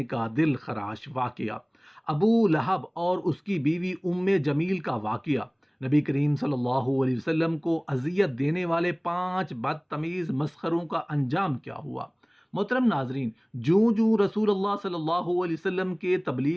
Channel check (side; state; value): both; identical; correlation 1.00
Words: کا دل خراش واقعہ، ابو لہب اور اس کی بیوی ام جمیل کا واقعہ، نبی کریم صلی اللہ علیہ وسلم کو اذیت دینے والے 5 بدتمیز مسخروں کا انجام کیا ہوا۔ محترم ناظرین، جوں رسول اللہ صلی اللہ علیہ وسلم کے